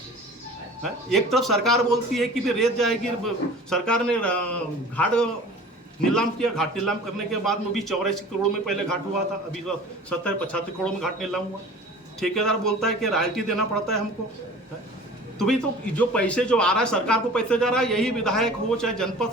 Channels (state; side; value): normal; both; correlation 0.42